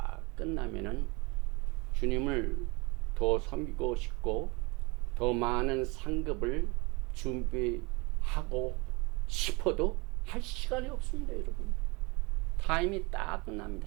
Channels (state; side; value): quieter; left; 27.1 dB